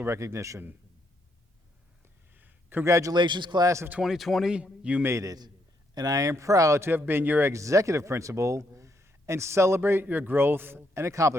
recognition. Congratulations, class of 2020, you made it. And I am proud to have been your executive principal and celebrate your growth and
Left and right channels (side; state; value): both; normal; correlation 0.75